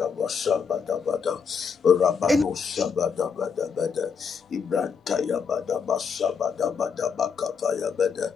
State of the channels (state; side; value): quieter; right; 6.2 dB